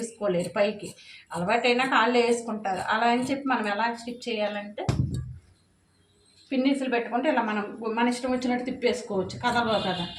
పైకి అలవాటైనా కాళ్ళు వేసుకుంటారు. అలా అని చెప్పి మనం ఎలా స్టిచ్ చేయాలంటే పిన్నీసులు పెట్టుకుంటే ఇలా మనం మన ఇష్టం వచ్చినట్టు తిప్పేసుకోవచ్చు. కదలవు కదా,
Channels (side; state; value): both; identical; correlation 1.00